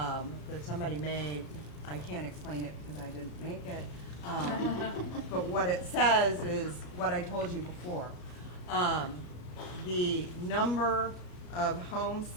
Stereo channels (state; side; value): late; right; 33 ms